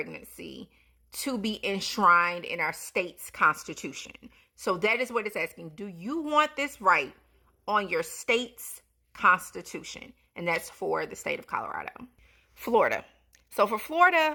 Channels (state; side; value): identical; both; correlation 1.00